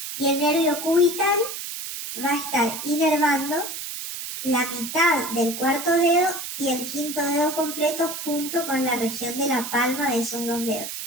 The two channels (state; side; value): noise; right; hiss, 7 dB below the sound